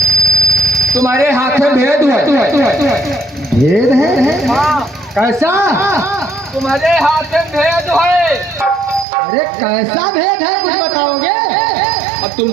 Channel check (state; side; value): drops out; left; at 9.1 s